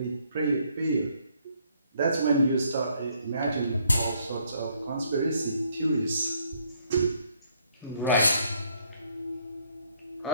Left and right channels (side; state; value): both; inverted; correlation -0.69